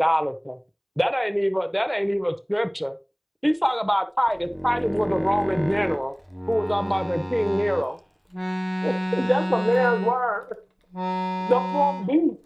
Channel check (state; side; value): identical; both; correlation 1.00